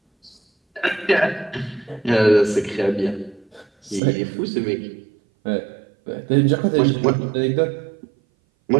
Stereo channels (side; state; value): left; drops out; at 4.0 s